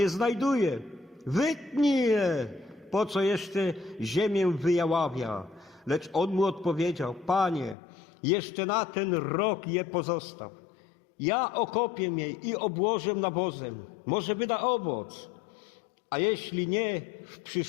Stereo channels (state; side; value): drops out; right; at 7.8 s